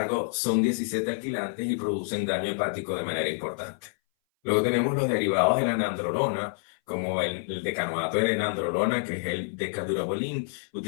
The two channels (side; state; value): right; silent; 58 dB below the other